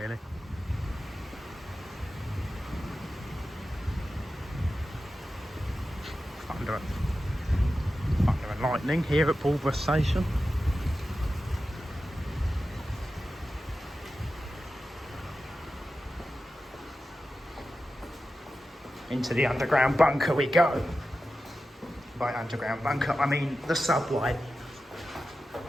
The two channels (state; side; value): normal; both; correlation 0.93